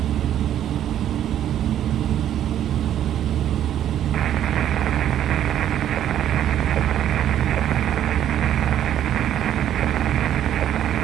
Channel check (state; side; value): quieter; left; 10.9 dB